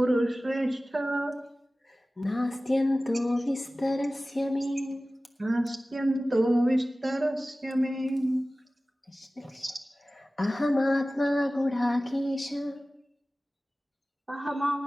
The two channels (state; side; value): normal; both; correlation 0.97